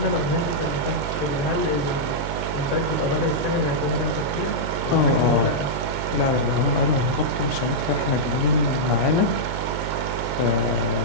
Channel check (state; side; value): noise; right; hum, 5 dB below the sound